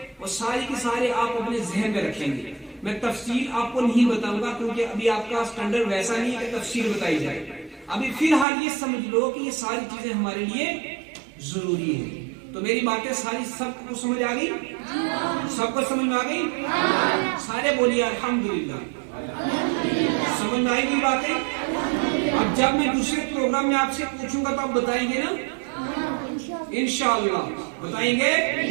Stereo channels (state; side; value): drops out; left; at 8.5 s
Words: وہ ساری کے سارے آپ اپنے ذہن میں رکھیں گے. میں تفصیل آپ کو نہیں بتاؤں گا کیونکہ ابھی آپ کا سٹینڈرڈ ویسا نہیں ہے کہ تفصیل بتائی جائے. ابھی فی الحال یہ سمجھ لو کہ یہ ساری چیزیں ہمارے لیے ضروری ہیں. تو میری باتیں ساری سب کو سمجھ آ گئی؟ سب کو سمجھ میں آ گئی؟ سارے بولیے الحمدللہ. سمجھ میں آئی گئی باتیں؟ اب جب میں دوسرے پروگرام میں آپ سے پوچھوں گا تو آپ بتائیں گے نا؟ انشاءاللہ بتائیں گے؟